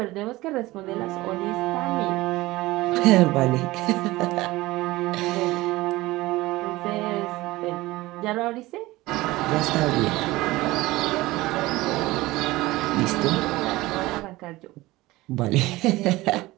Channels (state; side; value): quieter; left; 19.2 dB